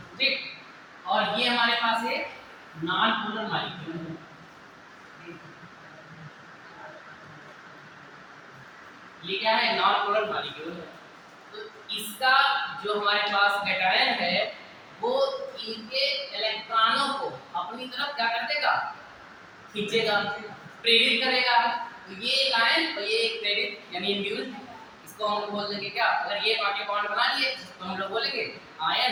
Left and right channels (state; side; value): identical; both; correlation 1.00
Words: ठीक, और ये हमारे पास है नॉन पोलर मॉलिक्यूल, ये क्या है, नॉन पोलर मॉलिक्यूल है। तो इसका जो हमारे पास कैटायन है वो इनके इलेक्ट्रॉनों को अपनी तरफ क्या कर देगा, खींचेगा, प्रेरित करेगा। तो ये एक आयन और ये एक प्रेरित यानी इंड्यूस्ड, इसको हम बोल देंगे क्या, अगर ये पार्टी बॉन्ड बना लिए तो हम लोग बोलेंगे आयन